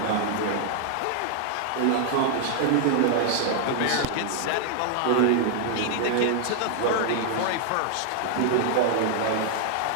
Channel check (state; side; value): different; both; correlation -0.01